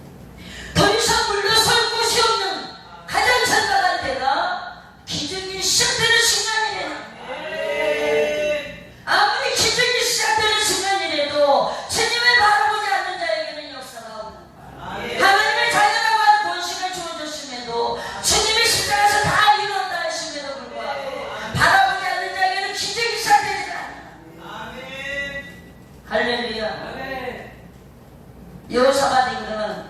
더 이상 물러설 곳이 없는 가장 선박한 때가 기적이 시작되는 순간이래요. 아무리 기적이 시작되는 순간이라도 주님을 바라보지 않는 자에게는 역사가 없는, 하나님의 자녀라고 하는 권식을 주어졌음에도 주님의 십자가에서 다 이뤘다 했음에도 불구하고 바라보지 않는 자에게는 기적이 시작되지 않아요. 할렐루야. 여호사밧 임금은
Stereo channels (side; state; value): both; identical; correlation 1.00